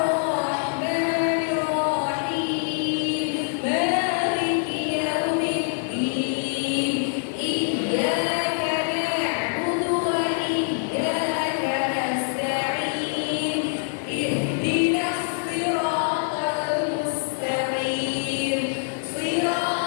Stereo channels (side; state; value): right; silent; digital silence